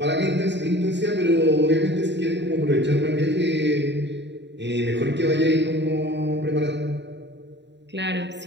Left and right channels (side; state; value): left; late; 0.52 ms